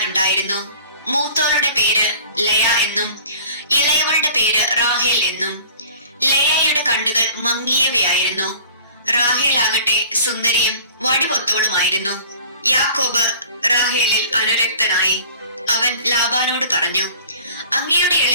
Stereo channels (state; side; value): inverted; both; correlation -0.46